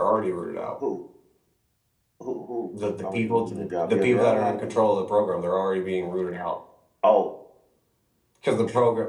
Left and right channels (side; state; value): both; identical; correlation 1.00